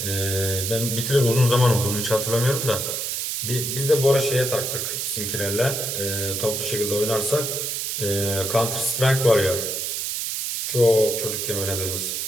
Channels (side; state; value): right; noise; hiss, 2 dB below the sound